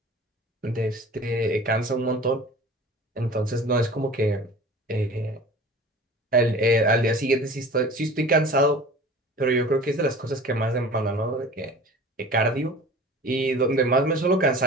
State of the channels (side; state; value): both; normal; correlation 0.41